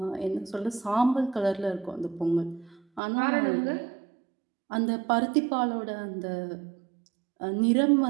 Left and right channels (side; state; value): left; drops out; at 3.0 s